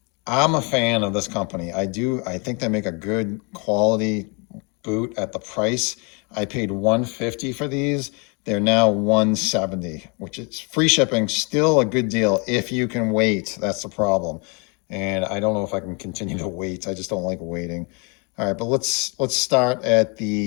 I'm a fan of this company. I think they make a good quality boot at the price. I paid $150 for these. They're now $170, which is free shipping, still a good deal if you can wait. That's the problem. And I don't know if I can continue to wait. I just don't like waiting. All right, but let's start at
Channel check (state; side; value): quieter; right; 32.3 dB